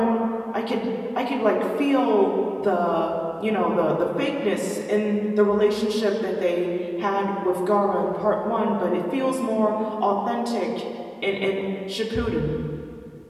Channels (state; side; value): identical; both; correlation 1.00